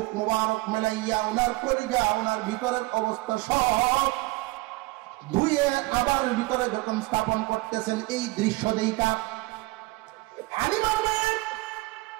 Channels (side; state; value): left; quieter; 22.0 dB